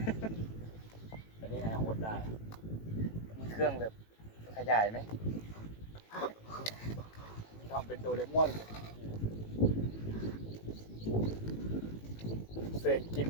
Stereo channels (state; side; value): late; right; 18 ms